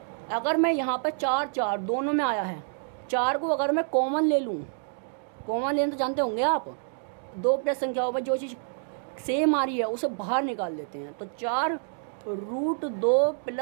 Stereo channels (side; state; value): left; silent; digital silence